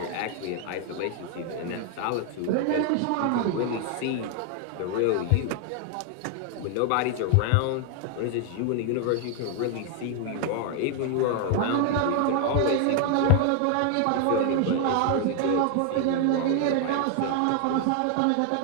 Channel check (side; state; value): both; different; correlation 0.00